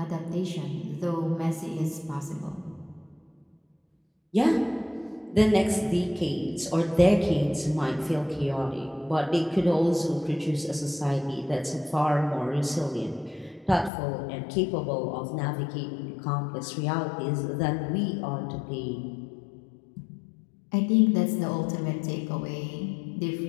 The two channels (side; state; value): right; drops out; at 13.9 s